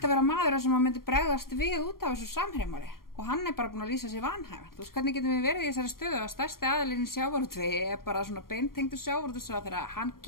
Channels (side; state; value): right; late; 0.92 ms